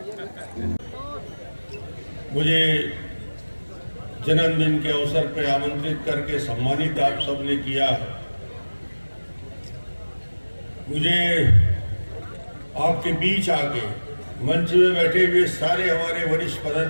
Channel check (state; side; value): inverted; both; correlation -1.00